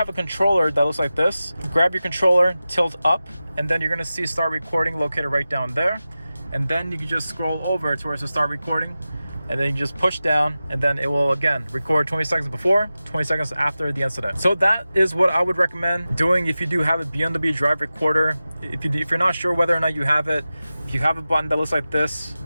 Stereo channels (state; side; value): inverted; both; correlation -0.95